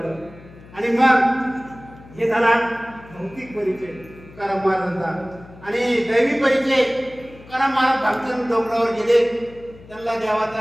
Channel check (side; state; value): left; noise; hum, 21 dB below the sound